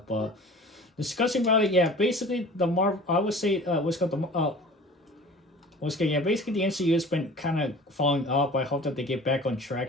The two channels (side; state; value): both; normal; correlation 0.43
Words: But discussing about it, yeah, basically the Marvel, I would say, what's called the once again, yeah, basically the MCU has been kind of falling off. I hope that they get back on